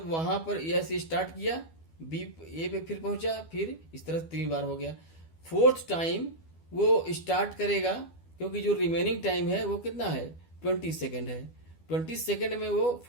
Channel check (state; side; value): late; right; 12 ms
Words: वहां पर ए से स्टार्ट किया, बी ए पे फिर पहुंचा, फिर इस तरह 3 बार हो गया। फोर्थ टाइम वो स्टार्ट करेगा, क्योंकि जो रिमेनिंग टाइम है वो कितना है, 20 सेकेंड है। 20 सेकेंड में वो